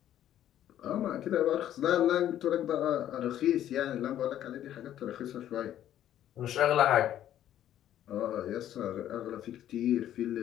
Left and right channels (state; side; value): quieter; right; 11.6 dB